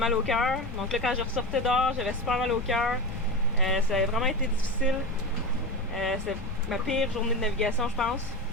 au cœur. Donc là, quand je ressortais dehors, j'avais super mal au cœur. Ça a vraiment été difficile. C'était ma pire journée de navigation, je pense.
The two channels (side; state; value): both; normal; correlation 0.23